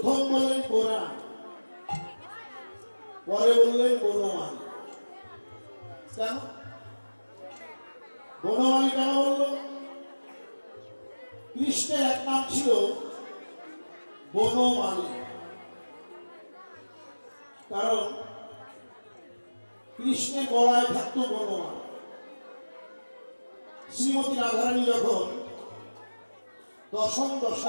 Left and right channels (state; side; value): inverted; both; correlation -1.00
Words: বললেন পুরাণ, পরে বললেন বনমালী। কেন বনমালী কেন বলল? কৃষ্ণের এক নাম ছিল বনমালী, কারণ কৃষ্ণের গলায় থাকতো বনমালা। শ্রীমতী রাধারানী যখন দশম